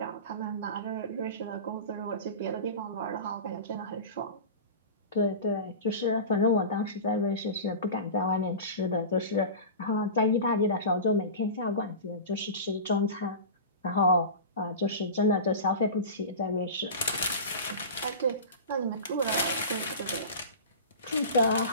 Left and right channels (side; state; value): both; inverted; correlation -0.31